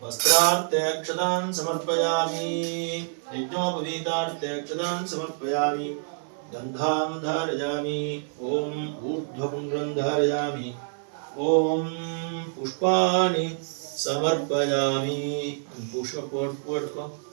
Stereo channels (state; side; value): silent; left; digital silence